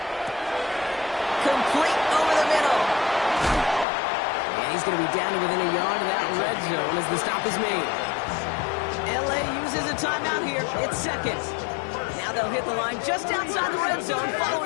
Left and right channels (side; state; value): right; drops out; at 3.9 s